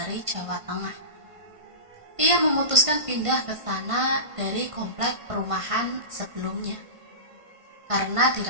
Jawa Tengah. Ia memutuskan pindah ke sana dari komplek perumahan sebelumnya karena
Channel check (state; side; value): late; left; 1.5 ms